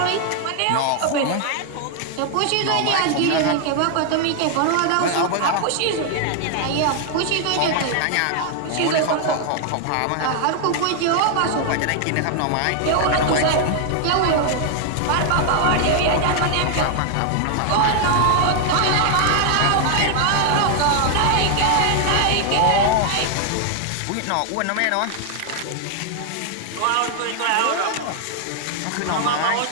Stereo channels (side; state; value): both; different; correlation 0.00